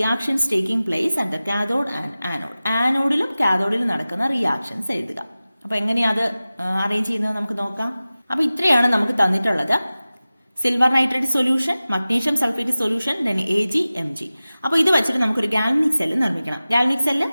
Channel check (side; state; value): both; inverted; correlation -0.97